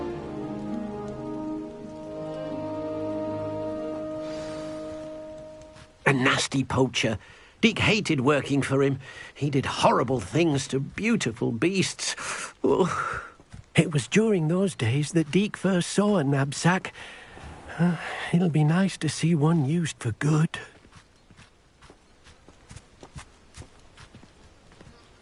A nasty poacher. Deke hated working for him. He did horrible things to beautiful beasts. Oh. It was during those days that Deke first saw a knapsack. It'll be nice to see one used for good.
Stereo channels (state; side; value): identical; both; correlation 1.00